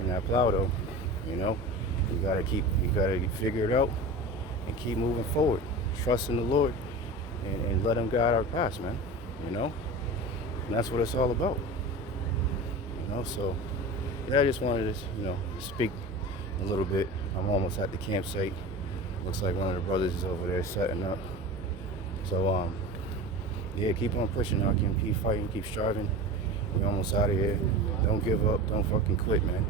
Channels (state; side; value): normal; both; correlation 0.31